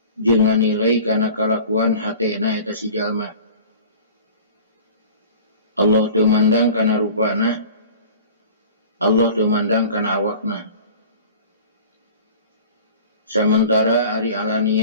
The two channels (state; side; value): inverted; both; correlation -0.43